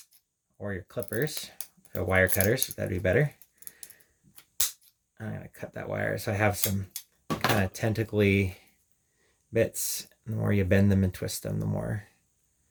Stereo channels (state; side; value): identical; both; correlation 1.00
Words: or your clippers, wire cutters, that'd be better. I'm going to cut that wire so I have some kind of tentacly bits. The more you bend them and twist them, the more